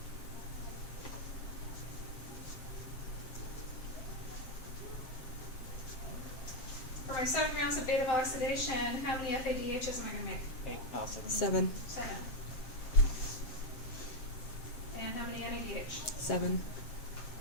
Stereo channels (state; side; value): late; right; 7.5 ms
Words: For my 7 rounds of beta oxidation, how many FADHs am I going to make? 7. 7. And how many NADH? 7.